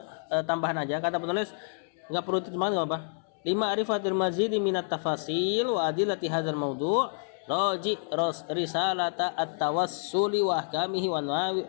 tambahan aja. Kata penulis nggak perlu terjemahan, nggak apa. 5 arifatil mazidi minat tafasil wa adilati hadzal mawdu' raji risalata at-tawassuli wa ahkamihi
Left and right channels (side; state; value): right; silent; 58 dB below the other